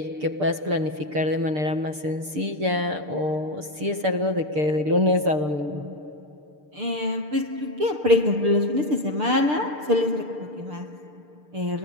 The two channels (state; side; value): late; left; 6.7 ms